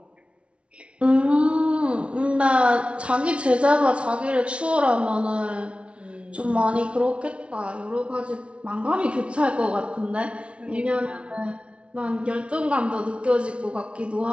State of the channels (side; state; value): left; late; 0.060 ms